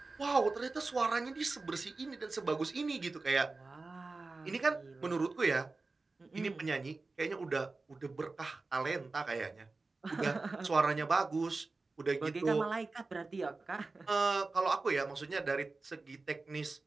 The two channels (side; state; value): left; quieter; 3.7 dB